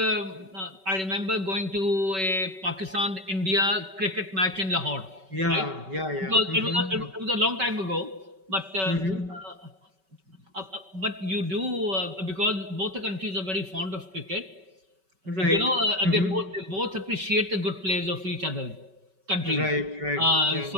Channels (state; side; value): late; left; 5.3 ms